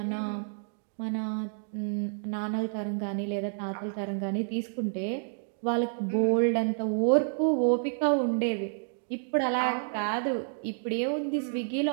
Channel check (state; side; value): silent; left; digital silence